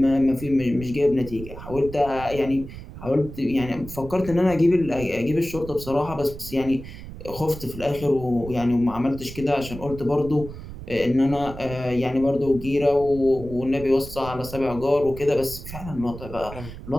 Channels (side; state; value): right; noise; rumble, 12 dB below the sound